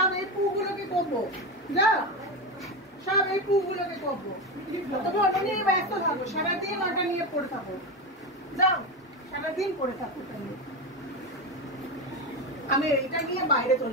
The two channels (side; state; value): both; normal; correlation 0.17